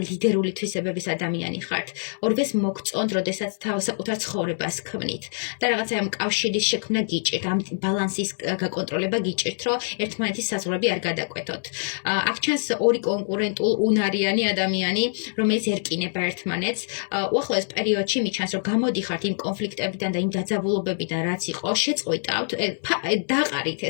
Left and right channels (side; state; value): right; silent; 62 dB below the other